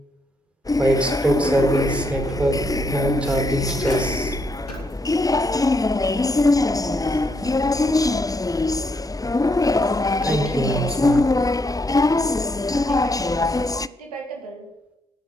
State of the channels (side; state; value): both; normal; correlation 0.76